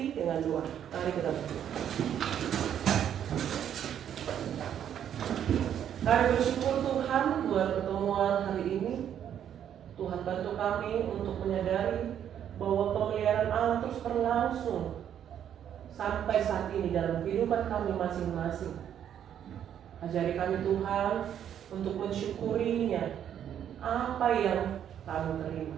dengan doa. Mari kita berdoa. Kami bersyukur Tuhan buat pertemuan hari ini. Tuhan bantu kami untuk menyadari bahwa pemeliharaan Allah terus berlangsung sampai saat ini dalam kehidupan kami masing-masing. Ajari kami Tuhan untuk mensyukurinya apa yang kami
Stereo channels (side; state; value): left; quieter; 9.6 dB